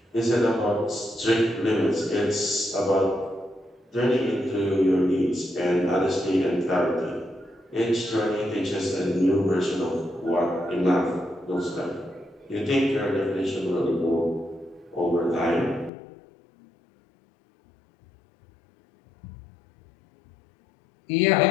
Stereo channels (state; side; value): drops out; right; at 15.9 s